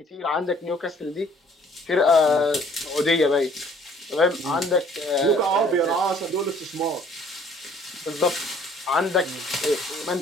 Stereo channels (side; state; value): both; normal; correlation 0.57